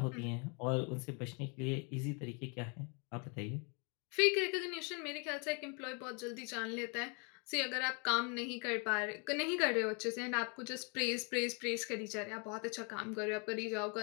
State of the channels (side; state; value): right; quieter; 35.0 dB